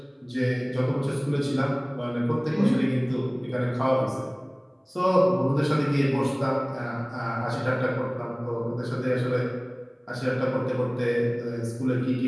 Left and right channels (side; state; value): both; identical; correlation 1.00